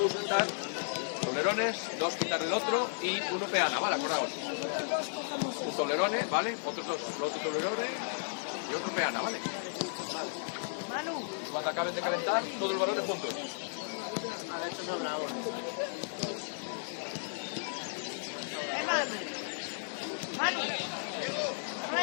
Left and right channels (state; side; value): silent; right; digital silence